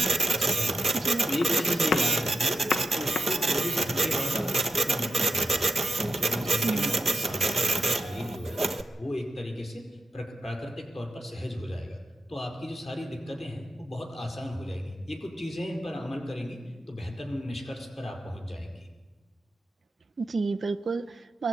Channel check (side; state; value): both; normal; correlation 0.88